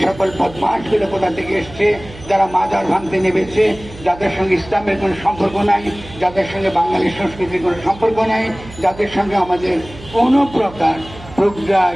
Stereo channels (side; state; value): right; noise; hum, 17 dB below the sound